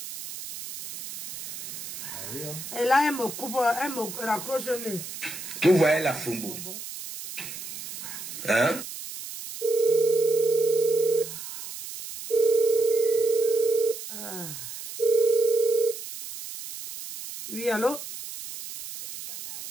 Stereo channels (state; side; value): noise; right; hiss, 10 dB below the sound